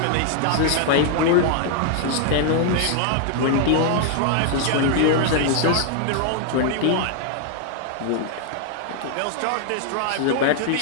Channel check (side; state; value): both; different; correlation 0.00